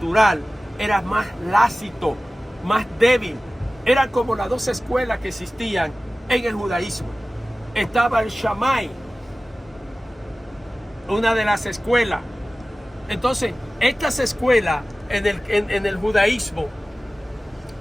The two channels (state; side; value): normal; both; correlation 0.97